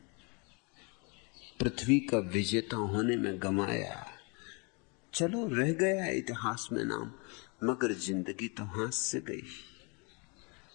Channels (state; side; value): quieter; right; 31.9 dB